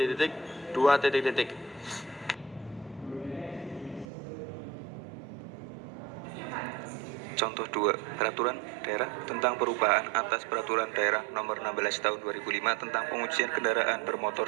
titik 2 titik titik. Contoh 2, Peraturan Daerah tentang perubahan atas Peraturan Daerah Nomor 16 Tahun 2005 tentang pengujian kendaraan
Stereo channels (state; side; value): drops out; left; at 4.0 s